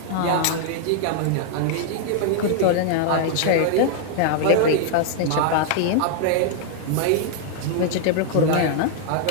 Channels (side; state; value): both; different; correlation 0.00